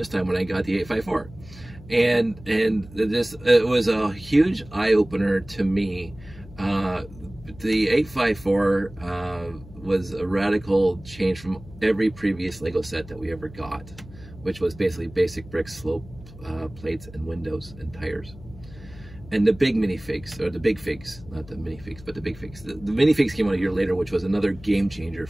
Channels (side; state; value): left; noise; hum, 18 dB below the sound